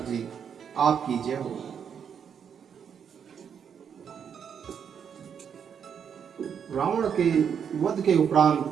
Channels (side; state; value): left; quieter; 7.6 dB